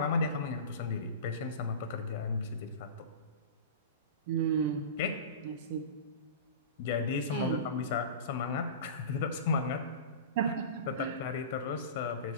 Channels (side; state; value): both; inverted; correlation -0.31